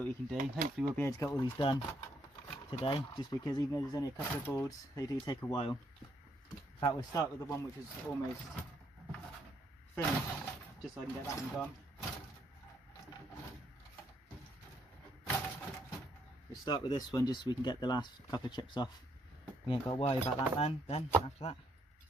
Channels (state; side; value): normal; both; correlation 0.73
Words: we can do. Hopefully we'll be able to get all these done today, just because even though there's only a couple of boards, they do take a while. In fact, we'll start with the one which is almost finished, just so I can get that one gone. We'll start with this one just so we can get the last couple of chips off. We ain't got to worry about that then after that.